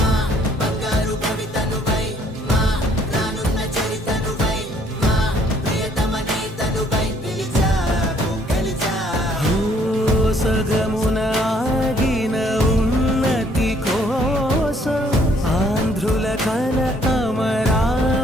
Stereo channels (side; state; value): both; normal; correlation 0.64